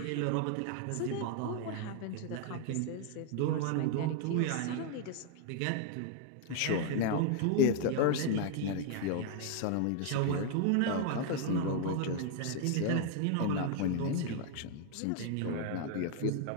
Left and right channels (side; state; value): both; different; correlation 0.00